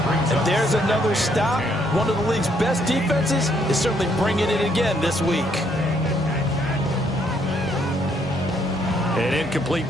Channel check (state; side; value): normal; both; correlation 0.70